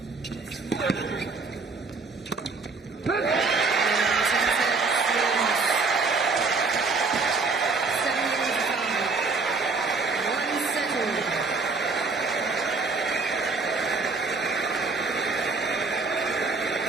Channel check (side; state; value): left; quieter; 4.1 dB